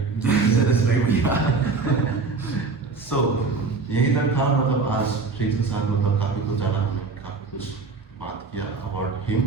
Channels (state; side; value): quieter; left; 4.3 dB